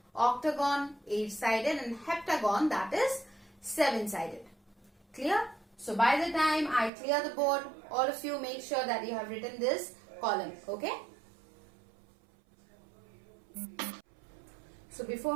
octagon 8-sided, and heptagon, that is 7-sided. Clear? So by the time I clear the board, all of you make sure that you have written this column. Okay. So before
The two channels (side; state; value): left; drops out; at 6.9 s